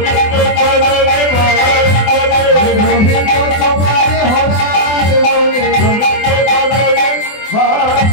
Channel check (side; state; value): right; late; 24 ms